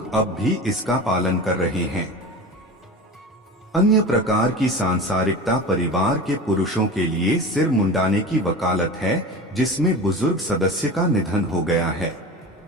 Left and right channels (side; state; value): both; normal; correlation 0.32